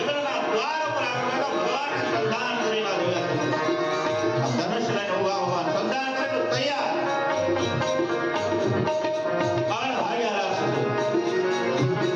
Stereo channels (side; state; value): both; identical; correlation 1.00